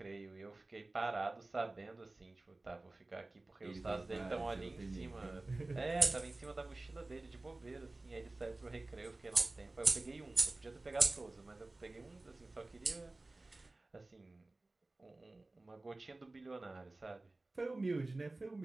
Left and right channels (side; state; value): left; quieter; 3.0 dB